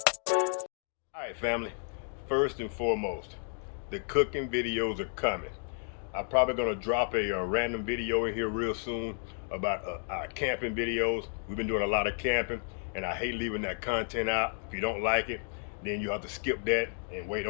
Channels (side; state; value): right; silent; 56 dB below the other